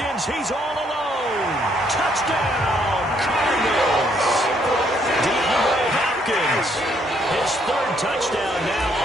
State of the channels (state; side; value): normal; both; correlation 0.70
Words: he's all alone. Touchdown, Cardinals. DeAndre Hopkins, his 3rd touchdown now